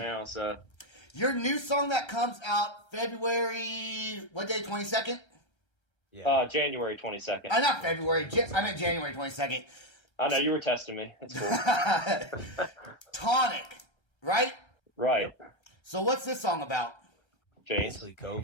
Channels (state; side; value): late; right; 1.3 ms